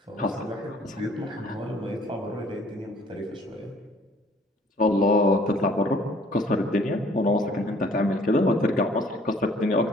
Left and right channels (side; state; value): both; normal; correlation 0.57